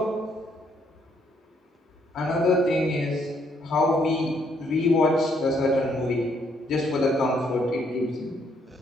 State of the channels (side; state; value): both; normal; correlation 0.71